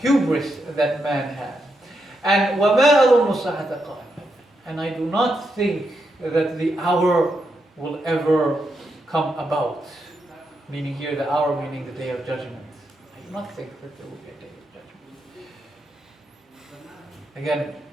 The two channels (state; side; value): normal; both; correlation 0.83